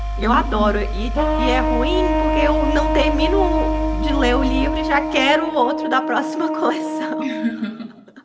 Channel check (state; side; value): identical; both; correlation 1.00